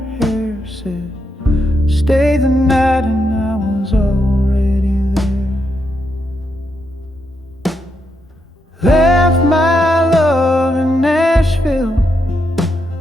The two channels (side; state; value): both; normal; correlation 0.81